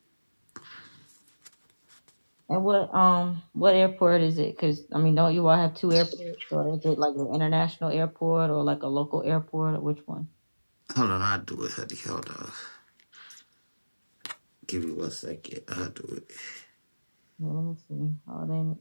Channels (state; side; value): inverted; both; correlation -1.00